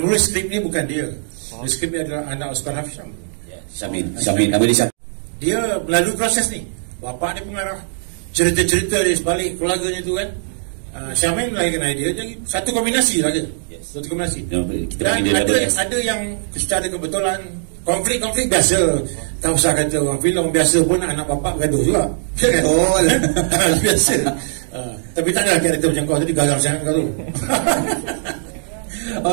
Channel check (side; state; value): left; silent; digital silence